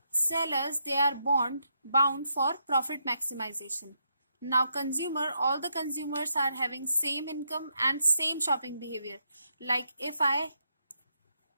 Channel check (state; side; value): inverted; both; correlation -0.79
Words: sellers, they are bound for profit maximization. Now all the consumers are having same income and same shopping behavior. Like if I